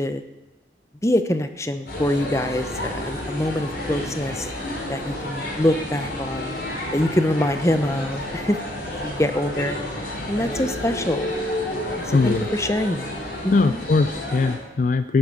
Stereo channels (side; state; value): both; normal; correlation 0.73